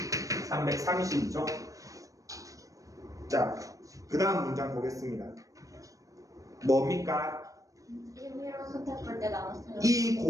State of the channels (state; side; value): late; left; 0.16 ms